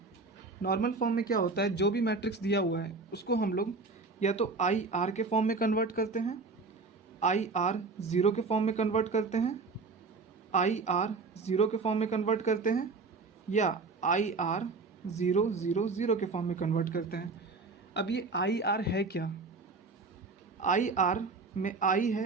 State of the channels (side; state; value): left; quieter; 4.1 dB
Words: नॉर्मल फॉर्म में क्या होता है, जो भी मैट्रिक्स दिया हुआ है उसको हम लोग या तो आई आर के फॉर्म में कन्वर्ट करते हैं, आई आर ज़ीरो के फॉर्म में कन्वर्ट करते हैं, आई आर ज़ीरो के फॉर्म में कन्वर्ट करते हैं, या I R zero zero zero के फॉर्म में कन्वर्ट करते हैं। अब ये आई आर है क्या? आई आर में आई